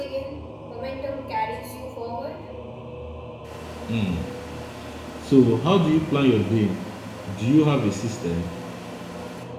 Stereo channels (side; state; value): both; identical; correlation 1.00